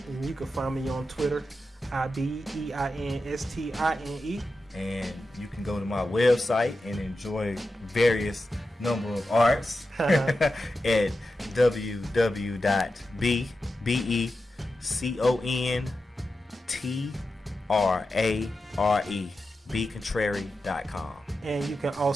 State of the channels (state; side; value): normal; both; correlation 0.91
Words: And you can find me on Twitter, IBEINSTINE. And you can go to my website and enjoy various number of arts at BContrare.com. And you can